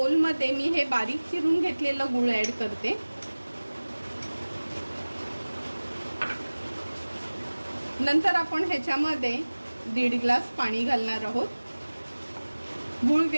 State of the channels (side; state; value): both; inverted; correlation -1.00